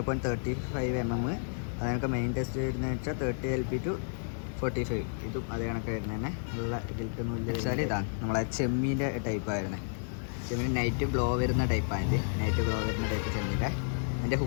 mm. അതിനൊക്കെ മെയിൻ ടെസ്റ്റ് വരുന്നത് വെച്ചാൽ 30 LB to 45. ഇതും അതേ കണക്ക് വരുന്നത് തന്നെ നല്ല ഗിൽറ്റ് നൂല് വെച്ചാൽ ഇതാണ് നമ്മളെ ചെമ്മീൻ്റെ ടൈപ്പായിരുന്നത്. ചെമ്മീൻ നൈറ്റ് ഗ്ലോ വരുന്ന ടൈപ്പാണ്. ഇത് നൈറ്റ് ഗ്ലോ വരുന്ന ടൈപ്പ് ചെമ്മീൻ്റെ. അതിൻ്റെ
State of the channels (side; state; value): right; silent; digital silence